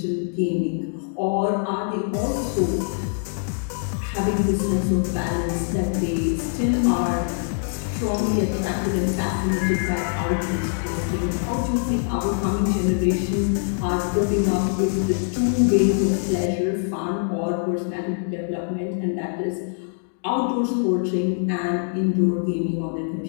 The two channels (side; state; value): right; silent; digital silence